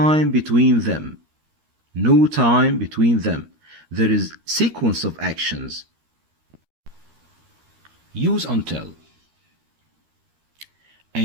between them. No time between them. There is sequence of actions. Use until.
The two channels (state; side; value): late; left; 13 ms